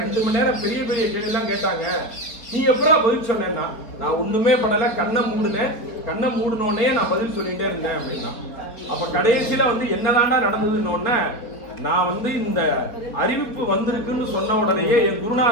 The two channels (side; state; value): right; late; 4.6 ms